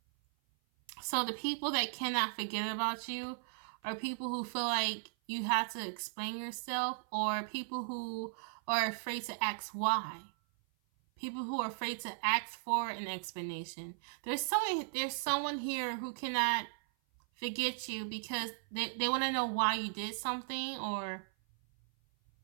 So the people that cannot forget about you are people who feel like you have to explain yourself, or people who are afraid to ask why. People who are afraid to ask for an explanation. There's someone here who cannot forget you because they want to know why you did something or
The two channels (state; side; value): silent; left; 53 dB below the other